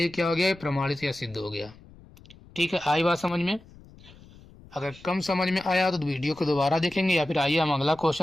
क्या हो गया, प्रमाणित या सिद्ध हो गया। ठीक है, आई बात समझ में। अगर कम समझ में आया तो वीडियो को दोबारा देखेंगे, या फिर आइए हम अगला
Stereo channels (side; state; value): left; noise; rumble, 22 dB below the sound